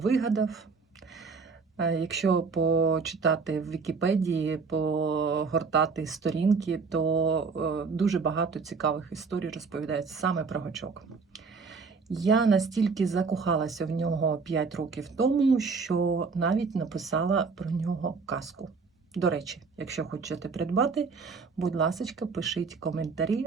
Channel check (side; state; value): left; quieter; 4.8 dB